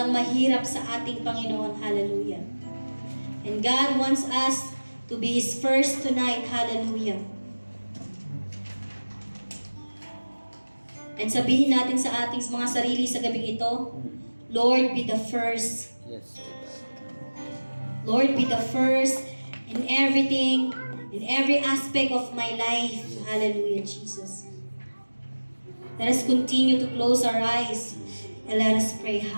mahirap sa ating Panginoon. Hallelujah. And God wants us to be His first tonight. Hallelujah. And sabihin natin sa ating mga sarili sa gabing ito, Lord, be the first. Yes. Lord, be the first in everything, in every aspect of my life. Hallelujah, Jesus. Let us continue to close our eyes and let us pray.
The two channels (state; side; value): inverted; both; correlation -1.00